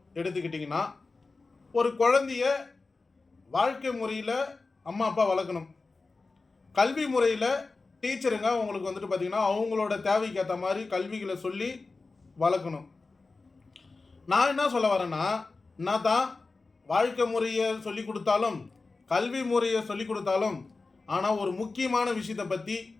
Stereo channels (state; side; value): quieter; right; 3.8 dB